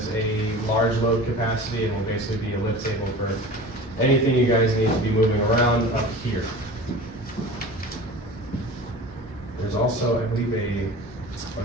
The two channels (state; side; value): normal; both; correlation 0.37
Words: a large load capacity and will basically be a lift table for anything you guys need to be moving around up here. There's also, I believe,